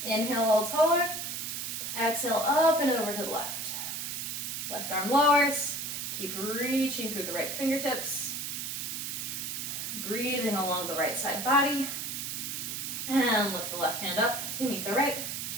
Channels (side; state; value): right; noise; hiss, 4 dB below the sound